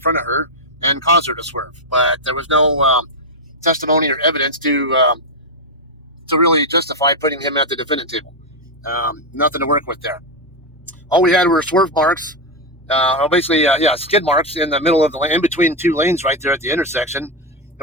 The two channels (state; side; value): normal; both; correlation 0.06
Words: of her and caused her to swerve, but there was no testimony or evidence to really justify putting him at the defendant table. Nothing to work with there. All we had were swerve marks, skid marks in the middle of the lane, in between 2 lanes right there at the intersection,